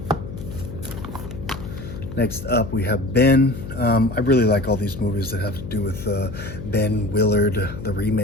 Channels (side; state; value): left; noise; hum, 10 dB below the sound